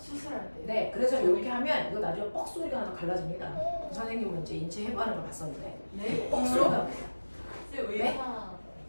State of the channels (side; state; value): both; inverted; correlation -1.00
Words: 때. 네, 그래서 이렇게 하면 이거 나중에 뻑 소리가 나서 갈라집니다. 선생님은 이제 인체 해부하는 걸 봤었는데 네? 뻑 소리가 납니다. 왜, 네?